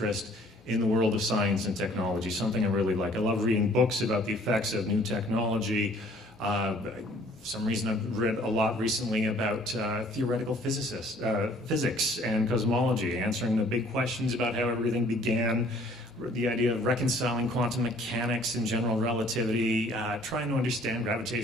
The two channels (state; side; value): normal; both; correlation 0.57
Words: in the world of science and technology, something I really like. I love reading books about the effects of new technology. For some reason I've read a lot recently about theoretical physics and cosmology, answering the big questions about how everything began, the idea of reconciling quantum mechanics and general relativity, trying to understand